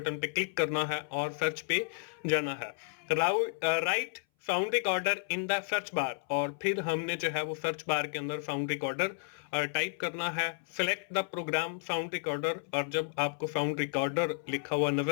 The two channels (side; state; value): right; silent; 56 dB below the other